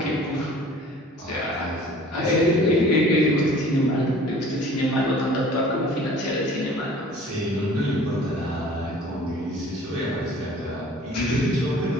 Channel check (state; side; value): normal; both; correlation 0.48